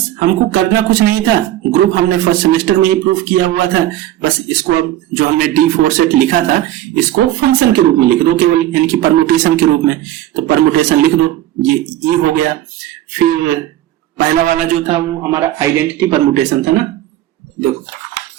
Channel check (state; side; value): quieter; left; 13.5 dB